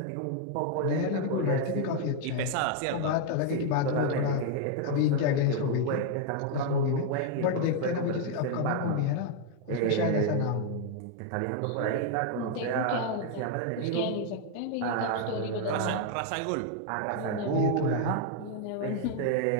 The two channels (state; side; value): different; both; correlation 0.00